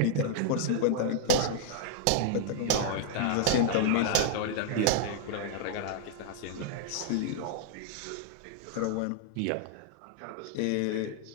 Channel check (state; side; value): different; both; correlation -0.01